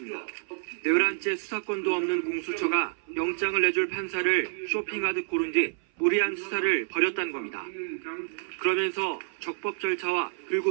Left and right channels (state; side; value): silent; left; 56 dB below the other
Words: 11째 수사권도 없는 공수처가 영장을 내줄 판사를 쇼핑하듯 고른 뒤 무리한 수사를 벌였다는 겁니다. 그러면서 적법 절차와